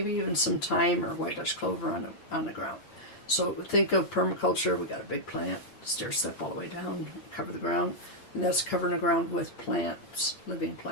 even some thyme or white Dutch clover on the ground. So think of permaculture. We got a big plant, stair step all the way down, cover the ground, and that's covering the ground with plants, living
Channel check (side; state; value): right; late; 8.8 ms